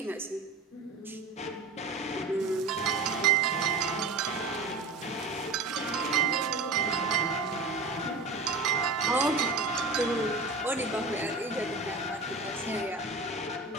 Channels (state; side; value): quieter; left; 3.7 dB